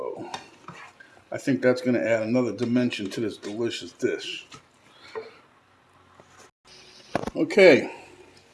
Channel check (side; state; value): both; identical; correlation 1.00